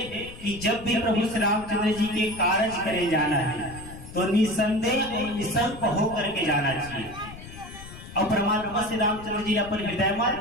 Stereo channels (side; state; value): left; noise; rumble, 15 dB below the sound